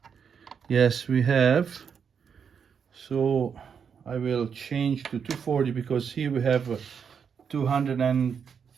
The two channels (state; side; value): quieter; left; 6.9 dB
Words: Yes, we have. So I will change to 240 because here we have